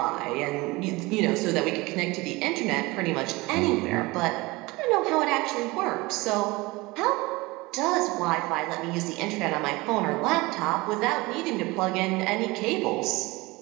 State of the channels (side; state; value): left; quieter; 22.5 dB